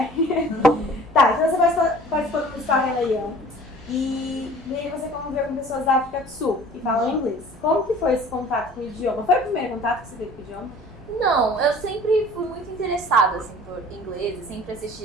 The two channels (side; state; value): both; normal; correlation 0.47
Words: Tá, então você participou do Musical Leão. E aí você conviveu com pessoas da África do Sul que falam inglês. Como que foi esse contato com o idioma? Foi o primeiro contato que você teve com o idioma? Não, eu sempre fui muito interessada assim, por inglês. Eu sempre